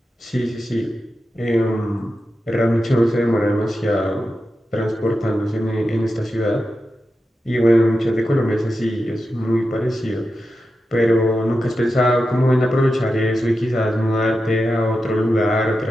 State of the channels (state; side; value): normal; both; correlation 0.90